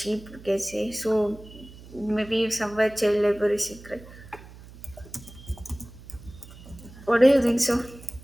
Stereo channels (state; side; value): noise; right; hum, 18 dB below the sound